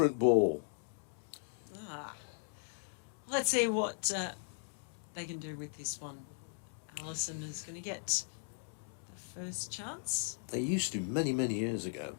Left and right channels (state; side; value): silent; right; digital silence